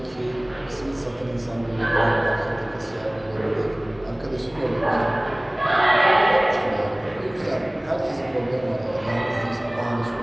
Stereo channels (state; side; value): noise; left; hum, 27 dB below the sound